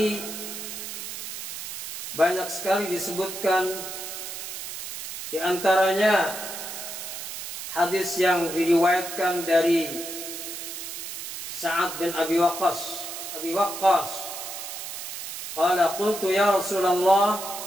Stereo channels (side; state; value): right; noise; hiss, 8 dB below the sound